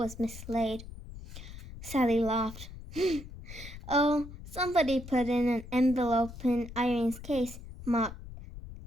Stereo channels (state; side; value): noise; left; rumble, 13 dB below the sound